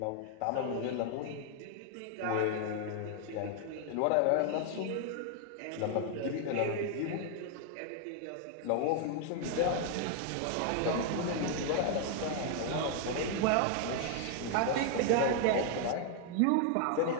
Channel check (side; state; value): both; different; correlation 0.00